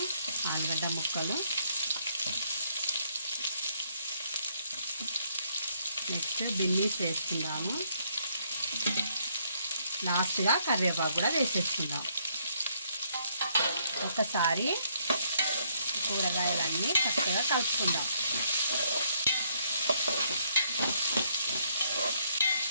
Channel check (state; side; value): inverted; both; correlation -0.70